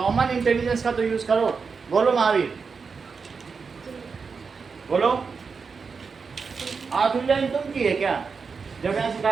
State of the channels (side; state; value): left; quieter; 5.2 dB